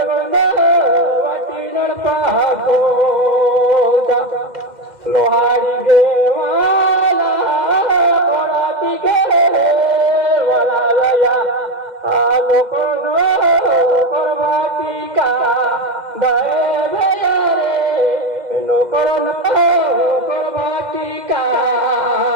वाटीण पाखो लोहारी गेवाला ओळाती गे वाला लया लोको नो परवाती का दे भया रे लोको नो परवाती का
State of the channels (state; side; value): late; left; 2.1 ms